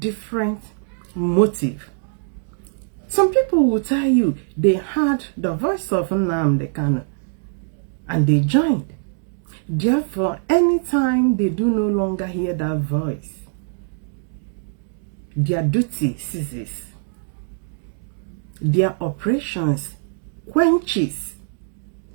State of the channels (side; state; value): left; silent; digital silence